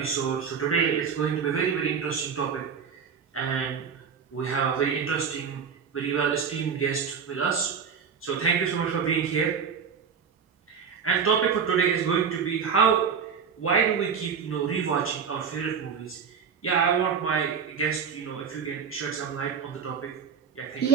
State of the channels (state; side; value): quieter; left; 6.5 dB